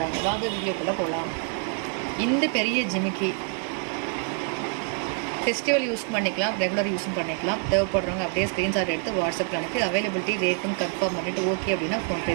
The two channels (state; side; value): quieter; left; 38.1 dB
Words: வாங்க வீடியோக்குள்ளே போகலாம். இந்த பெரிய ஜிமிக்கி ஃபெஸ்டிவல் யூஸ் பண்ணிக்கலாம், ரெகுலர் யூஸும் பண்ணிக்கலாம். தேவைப்படுறவங்க அப்படியே ஸ்க்ரீன்ஷாட் எடுத்து வாட்ஸ்அப்பில் அனுப்பி அவைலபிலிட்டி ரேட்டுன்னு கன்ஃபார்ம் பண்ணிவிட்டு ஓகே அப்படின்னா